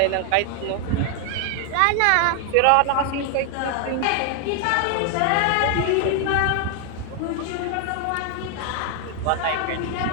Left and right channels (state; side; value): different; both; correlation 0.00